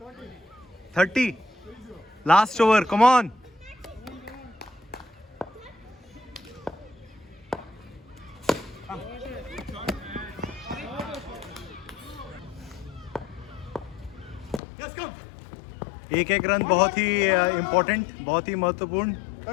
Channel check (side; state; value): right; drops out; at 14.6 s